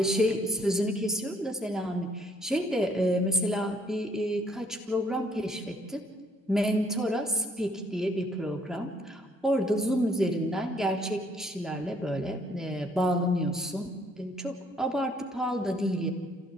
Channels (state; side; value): normal; both; correlation 0.65